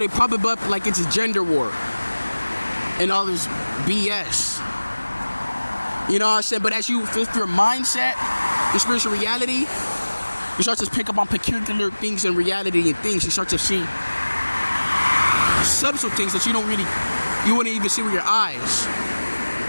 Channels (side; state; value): both; inverted; correlation -1.00